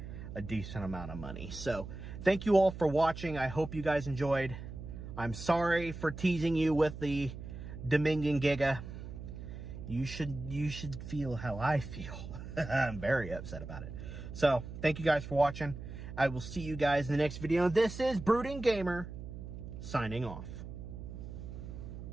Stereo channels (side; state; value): right; noise; hum, 10 dB below the sound